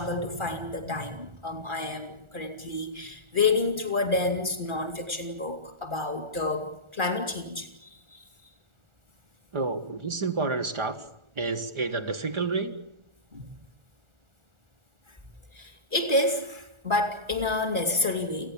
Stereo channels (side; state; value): left; late; 1.4 ms